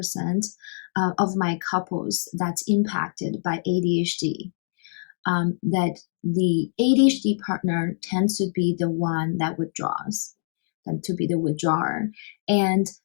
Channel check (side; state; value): right; silent; digital silence